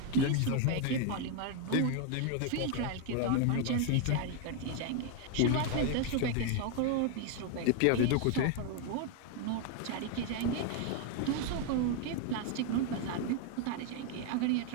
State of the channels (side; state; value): both; different; correlation 0.01